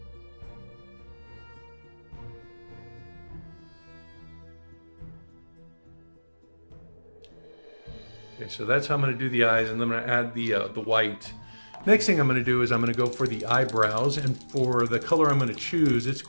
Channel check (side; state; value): both; inverted; correlation -1.00